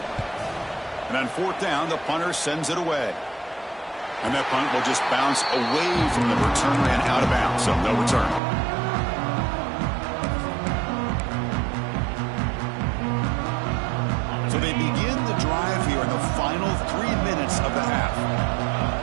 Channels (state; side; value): drops out; left; at 8.4 s